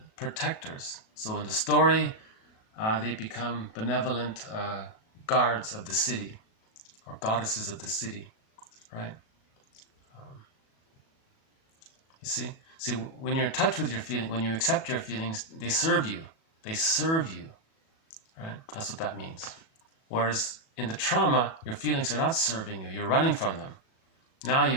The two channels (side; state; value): right; late; 37 ms